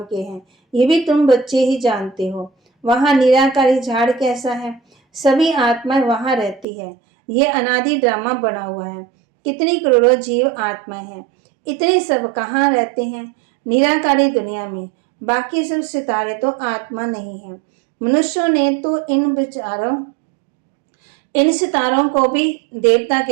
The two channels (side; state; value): left; drops out; at 6.7 s